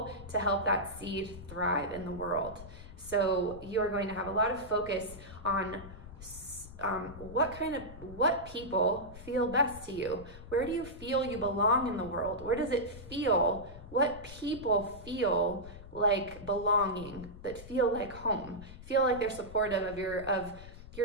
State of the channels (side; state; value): left; noise; rumble, 15 dB below the sound